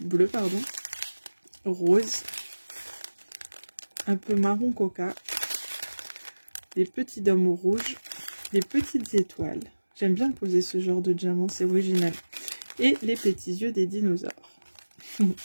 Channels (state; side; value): inverted; both; correlation -1.00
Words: bleus, pardon, rose, un peu marron coca, des petits dômes rouges, des petites étoiles. J'aime bien poser ce genre de diamant, c'est original. Et les petits yeux des dinosaures. Je